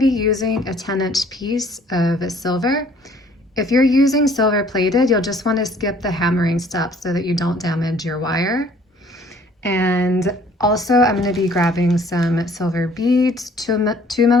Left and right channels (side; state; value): both; normal; correlation 0.57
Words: using a 10-inch piece of silver. If you're using silver plated, you'll just want to skip the hammering step so that you don't damage your wire. And also I'm going to be grabbing some silver beads, 2mm,